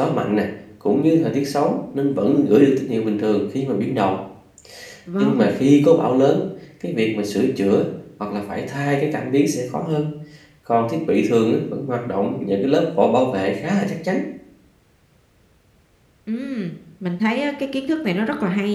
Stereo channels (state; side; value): identical; both; correlation 1.00